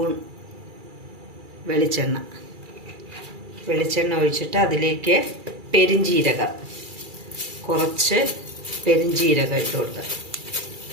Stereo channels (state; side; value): late; left; 2.3 ms